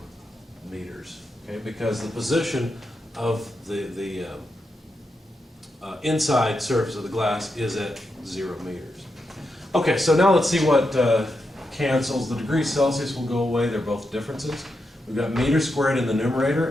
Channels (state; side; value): normal; both; correlation 0.85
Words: meters, okay? Because the position of the inside surface of the glass is at 0 meters. Okay, so now let's see what cancels. The degrees Celsius will go away, they're both differences. We've got meters squared in the